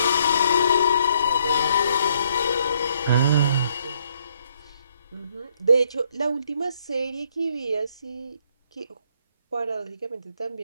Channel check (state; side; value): inverted; both; correlation -0.69